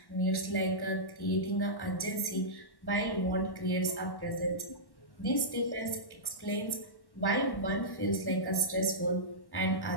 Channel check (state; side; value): late; right; 1.1 ms